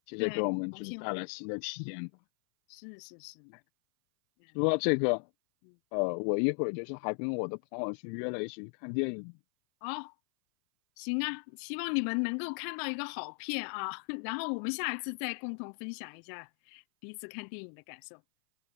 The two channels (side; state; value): right; silent; 54 dB below the other